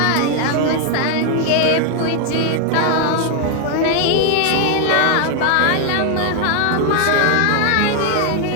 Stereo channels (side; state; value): both; different; correlation 0.01